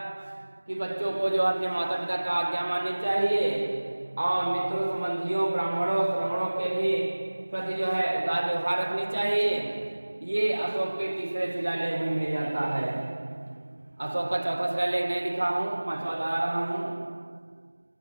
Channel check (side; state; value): both; inverted; correlation -1.00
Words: कि बच्चों को जो अपने माता पिता का आज्ञा माननी चाहिए। और मित्रों, संबंधियों, ब्राह्मणों, श्रमणों के भी प्रति जो है उदार व्यवहार रखनी चाहिए। ये अशोक के तीसरे शिलालेख में मिल जाता है। अशोक का चौथा शिलालेख नहीं लिखा हूँ, पांचवा ला रहा हूँ